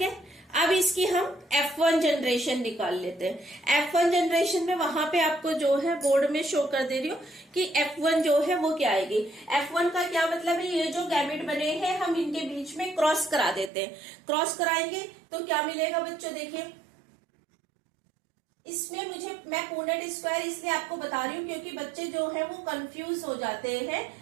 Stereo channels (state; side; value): drops out; left; at 13.7 s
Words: अब इसकी हम F1 जनरेशन निकाल लेते हैं। F1 जनरेशन में वहां पे आपको जो है बोर्ड में शो कर दे रही हूँ कि F1 जो है वो क्या आएगी। F1 का क्या मतलब है, ये जो गैमेट बने हैं हम इनके बीच में क्रॉस करा देते हैं। क्रॉस कराएंगे तो क्या मिलेगा बच्चों, देखिए इसमें मैं पूर्णट स्क्वायर इसलिए आपको बता रही हूँ क्योंकि बच्चे जो है वो कंफ्यूज हो जाते हैं